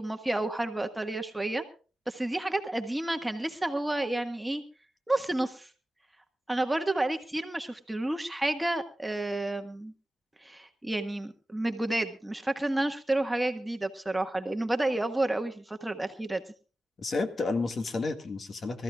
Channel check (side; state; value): both; normal; correlation 0.94